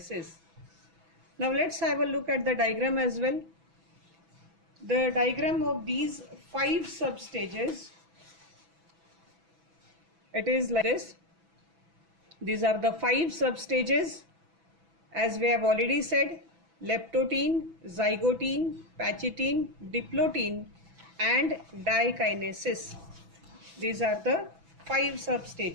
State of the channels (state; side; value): late; left; 6.1 ms